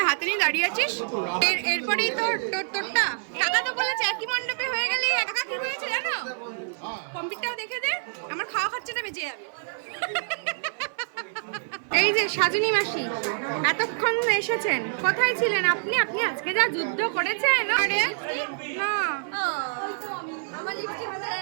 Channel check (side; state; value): left; silent; 55 dB below the other